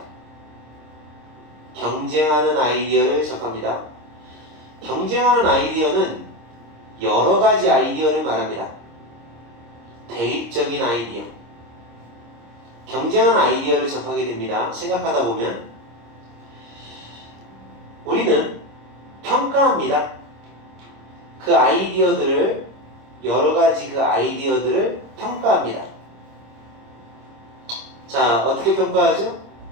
경쟁하는 아이디어를 접합니다. 경쟁하는 아이디어는 여러 가지 아이디어를 말합니다. 대립적인 아이디어. 경쟁하는 아이디어를 접하게 됩니다. 생각하다 보면 우리는 평가합니다. 그 아이디어들을, 여러 가지 그 아이디어들을 평가합니다. 자, 어떻게 평가하죠?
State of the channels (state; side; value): late; left; 26 ms